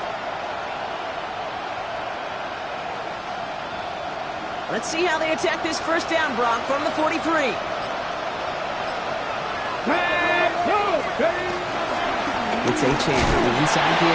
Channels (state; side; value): identical; both; correlation 1.00